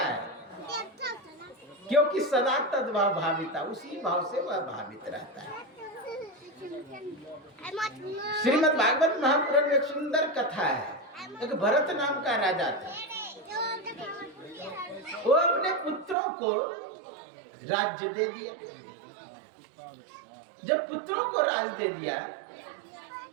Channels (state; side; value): drops out; left; at 16.2 s